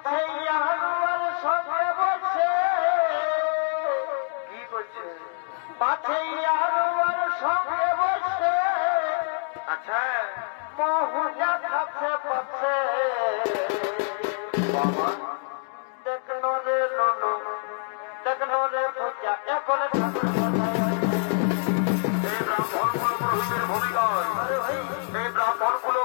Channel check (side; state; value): right; silent; 61 dB below the other